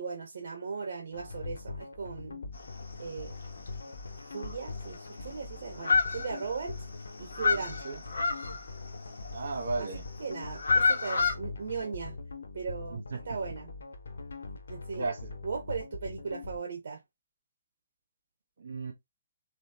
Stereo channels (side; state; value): both; inverted; correlation -0.83